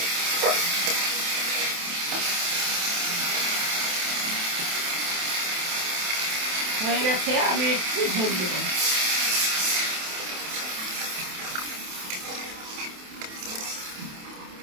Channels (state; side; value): late; left; 27 ms